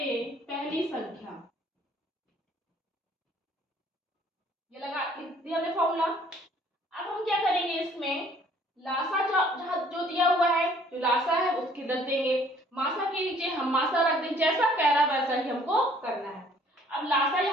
पहली संख्या। ये लगा दिया हमने फॉर्मूला। अब हम क्या करेंगे, इसमें लासा जो दिया हुआ है, जो लासा है उसकी रख देंगे, मासा के नीचे हम मासा रख देंगे। जैसा कह रहा है वैसा ही हमको करना है। अब लासा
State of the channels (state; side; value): normal; both; correlation 0.58